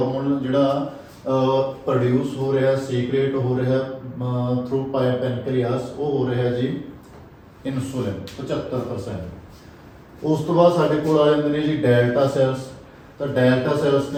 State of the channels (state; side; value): identical; both; correlation 1.00